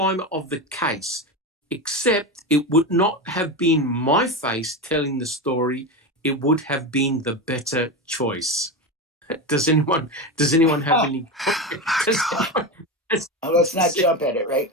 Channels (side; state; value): both; normal; correlation 0.19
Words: of the case, except it would not have been my face telling the story. It would have been the better choice. Does anyone have any? Let's not jump at it, right?